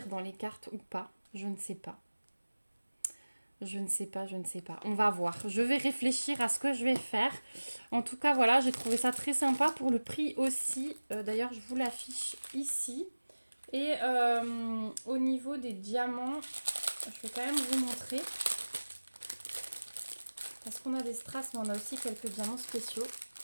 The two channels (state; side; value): inverted; both; correlation -1.00